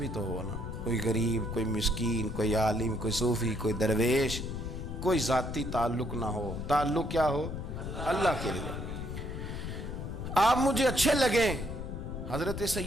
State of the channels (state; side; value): noise; left; rumble, 6 dB below the sound